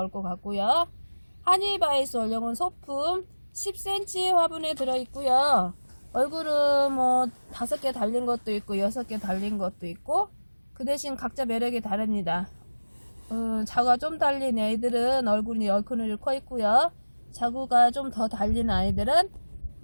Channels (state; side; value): inverted; both; correlation -1.00